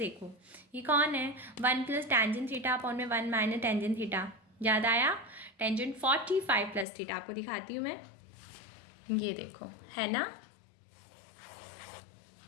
ये कौन है 1 प्लस टेंजेंट थीटा अपॉन में 1 माइनस टेंजेंट थीटा, याद आया, टेंजेंट 45 प्लस थीटा, आपको दिखाती हूँ मैं, ये देखो है ना,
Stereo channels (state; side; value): drops out; right; at 6.9 s